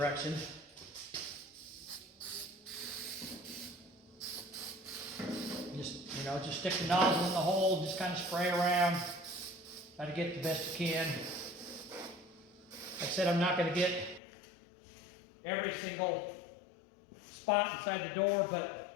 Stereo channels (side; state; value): right; drops out; at 14.2 s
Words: Just, you know, just stick the nozzle in the hole, just kind of spray around, try to get the best you can. Like I said, I'm not going to get every single spot inside the door, but